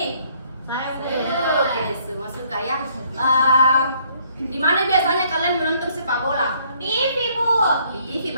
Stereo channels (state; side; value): inverted; both; correlation -0.65